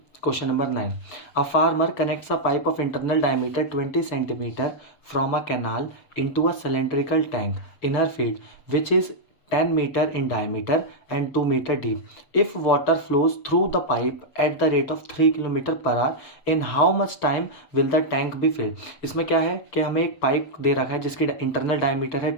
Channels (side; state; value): right; late; 6.8 ms